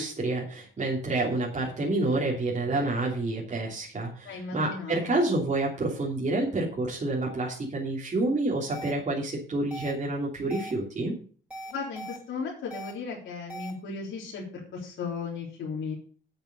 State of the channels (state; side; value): normal; both; correlation 0.49